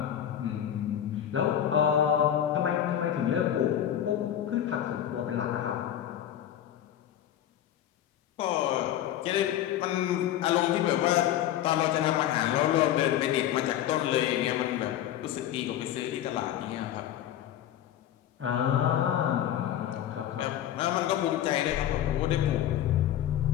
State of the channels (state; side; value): quieter; right; 11.2 dB